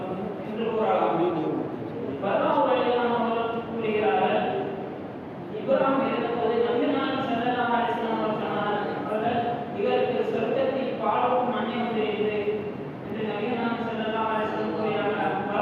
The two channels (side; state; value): both; identical; correlation 1.00